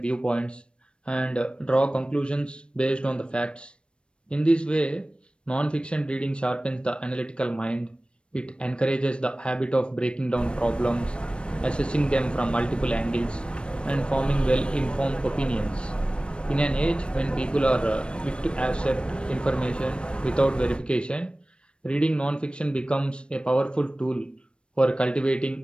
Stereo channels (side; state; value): right; late; 0.057 ms